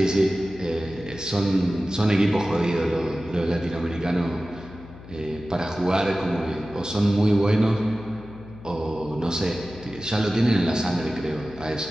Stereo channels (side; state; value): left; noise; hum, 17 dB below the sound